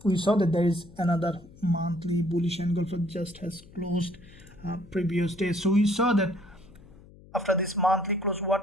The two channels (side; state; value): left; noise; hum, 23 dB below the sound